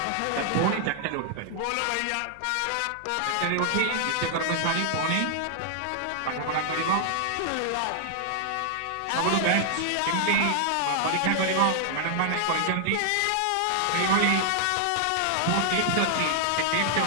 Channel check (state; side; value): different; both; correlation 0.00